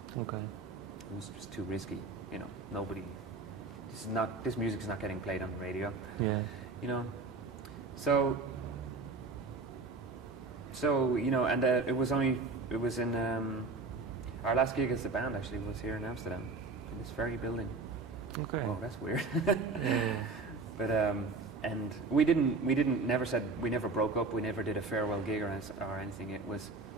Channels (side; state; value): left; quieter; 3.9 dB